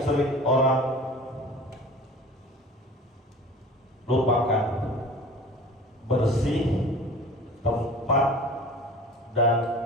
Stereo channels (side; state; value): both; normal; correlation 0.41